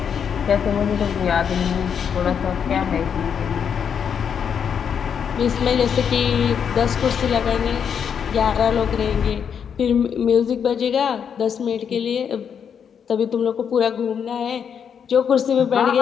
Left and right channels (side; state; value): right; quieter; 7.5 dB